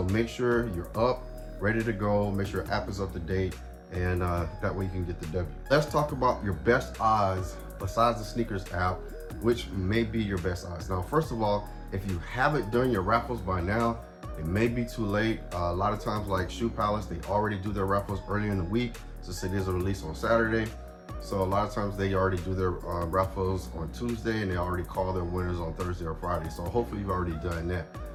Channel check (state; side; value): identical; both; correlation 1.00